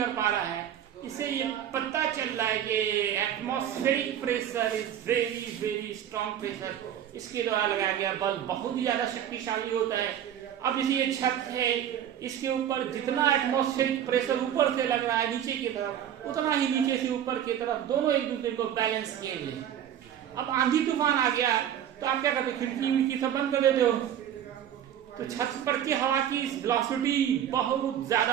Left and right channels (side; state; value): left; quieter; 10.2 dB